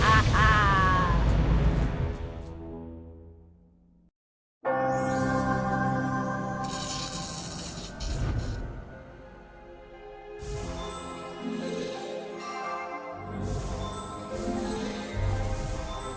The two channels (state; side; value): identical; both; correlation 1.00